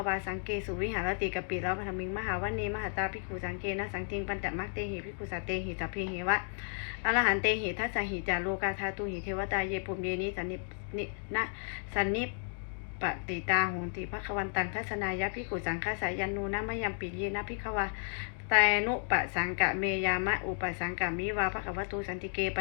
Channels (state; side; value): silent; right; 56 dB below the other